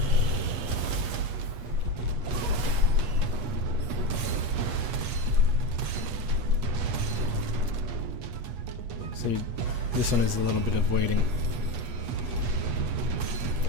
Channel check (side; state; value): left; late; 8.3 ms